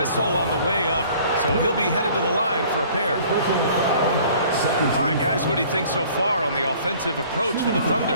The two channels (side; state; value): both; inverted; correlation -0.52